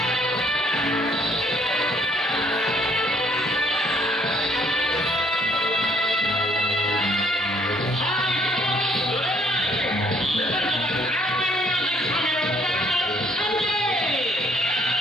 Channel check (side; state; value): both; normal; correlation 0.65